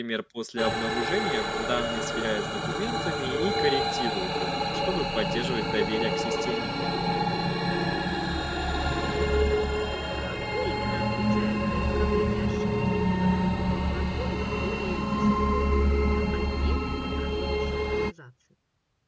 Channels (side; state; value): both; identical; correlation 1.00